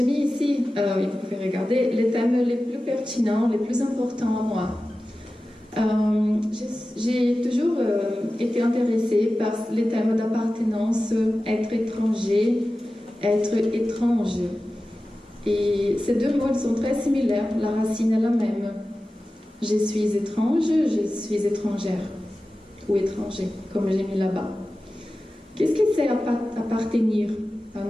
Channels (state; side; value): normal; both; correlation 0.95